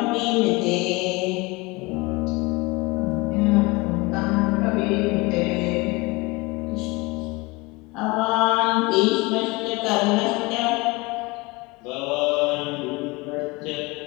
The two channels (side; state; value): right; quieter; 24.3 dB